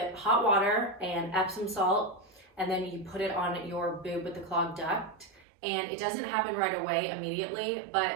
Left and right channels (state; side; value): drops out; left; at 5.5 s